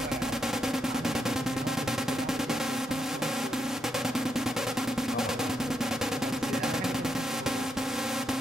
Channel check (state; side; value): normal; both; correlation 0.79